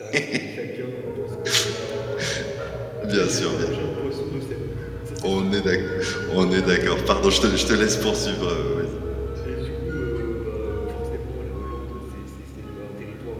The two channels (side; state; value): both; identical; correlation 1.00